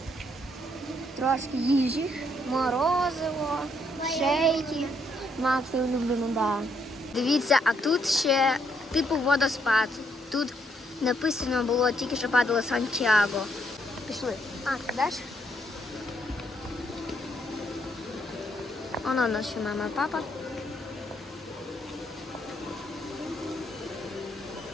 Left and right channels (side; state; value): both; normal; correlation 0.72